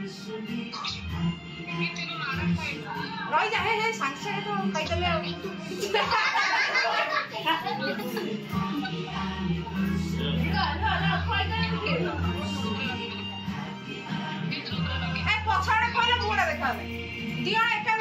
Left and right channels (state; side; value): identical; both; correlation 1.00